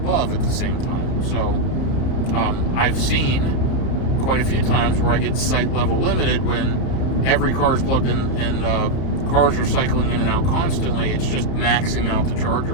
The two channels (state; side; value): late; right; 31 ms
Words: at the same time. So I've seen quite a few times where I get site level limited when every car is plugged in and cars are cycling in and out constantly. It's just maxing out the